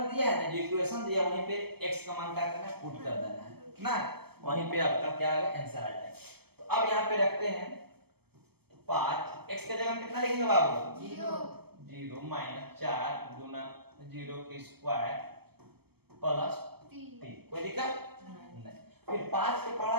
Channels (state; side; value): late; left; 0.97 ms